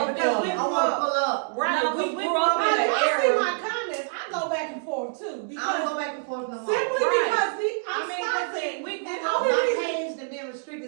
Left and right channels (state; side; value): silent; left; digital silence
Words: want to pull up. Right, No, we we grew up in I an see era. my comments. I go back and forth too. I don't Because go back and forth no more. simply Right. because I mean, stopping. we And grew up- only My reason, page has been